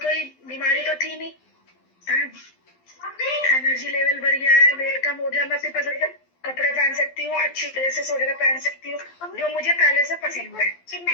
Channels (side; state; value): right; late; 12 ms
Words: बीमारी तो थी नहीं। एनर्जी लेवल बढ़ गया है, वेट कम हो गया, मैं सिर्फ कपड़े पहन सकती हूँ, अच्छी ड्रेसेस वगैरह पहन सकती हूँ, जो मुझे पहले से पसंद है।